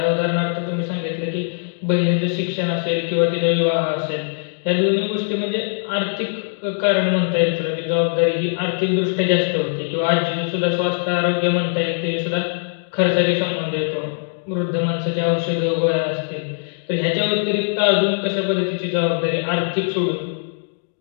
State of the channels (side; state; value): right; silent; digital silence